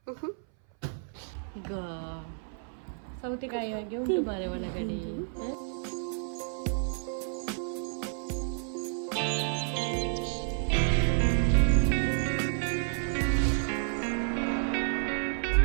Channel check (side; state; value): left; silent; 57 dB below the other